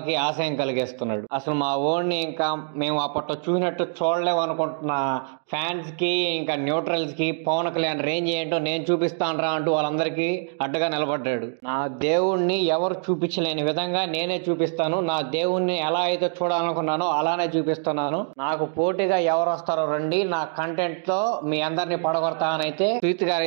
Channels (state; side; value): silent; left; 62 dB below the other